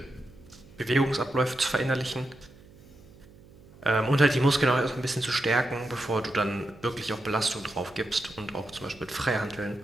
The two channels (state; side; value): noise; right; hum, 23 dB below the sound